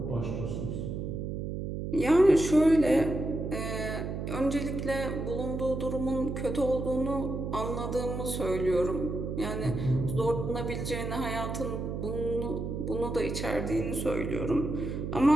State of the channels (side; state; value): right; noise; hum, 4 dB below the sound